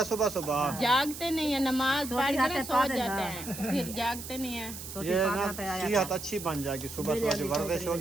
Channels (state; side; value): noise; right; hiss, 10 dB below the sound